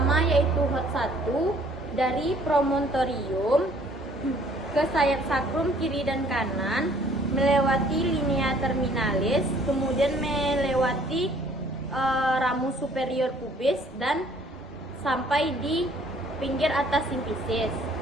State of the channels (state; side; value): normal; both; correlation 0.58